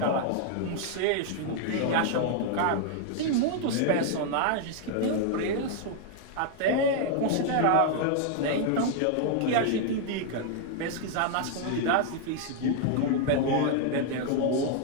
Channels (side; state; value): both; different; correlation 0.00